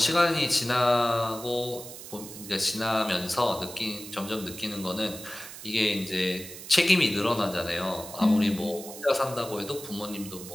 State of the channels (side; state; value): right; noise; hiss, 13 dB below the sound